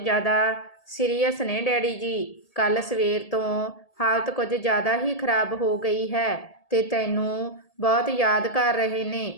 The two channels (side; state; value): right; late; 1.8 ms